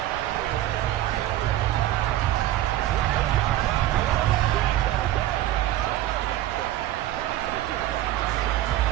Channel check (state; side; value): quieter; left; 14.1 dB